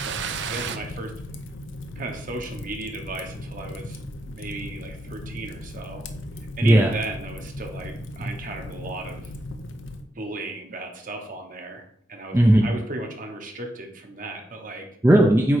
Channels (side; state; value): both; normal; correlation 0.84